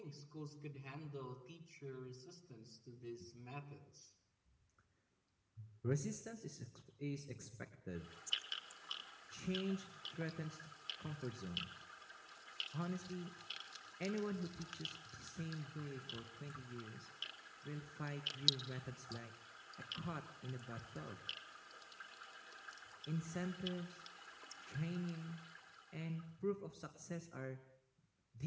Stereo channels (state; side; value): identical; both; correlation 1.00